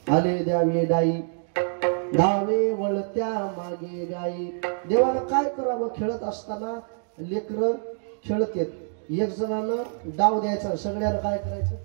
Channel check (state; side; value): silent; left; digital silence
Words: आले द्यावे डाई, धावे वळत्या मागे गाई. देवाला काय करावं? खेळत असताना लेकर खेळत येत, एक जणानं डाव द्यायचा, सगळ्यांना काय करायचं?